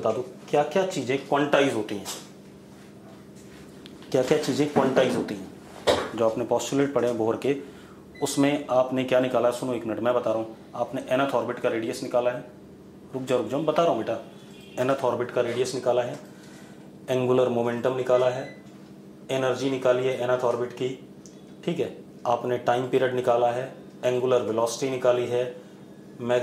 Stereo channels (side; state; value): both; identical; correlation 1.00